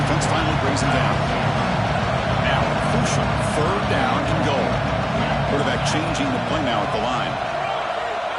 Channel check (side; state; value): both; identical; correlation 1.00